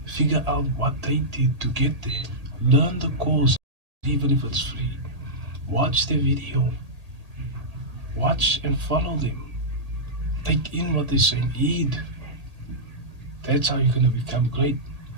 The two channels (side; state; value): left; late; 1.8 ms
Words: Figure out what they did to get there. Learn the course, even if it's free. Watch their video. Watch and follow them. Take in what they're saying. Heed. That's how you're going to become great.